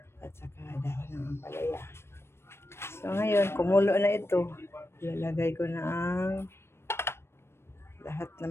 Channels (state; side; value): late; right; 0.12 ms